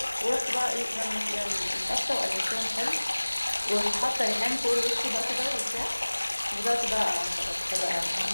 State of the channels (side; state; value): both; inverted; correlation -1.00